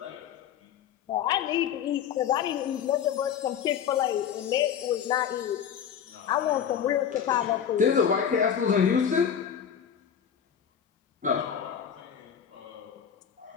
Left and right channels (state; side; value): quieter; right; 8.4 dB